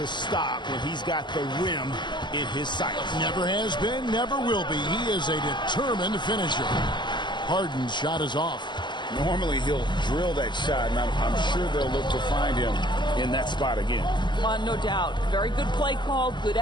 stop when he's got the rim in his sights. Never has been, never will be. He is a determined finisher. Harden's shot is off. Normally he'll drill that shot, and I'm sure they'll look to find him in that spot again. No doubt. Very good play call, good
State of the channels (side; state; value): right; late; 0.22 ms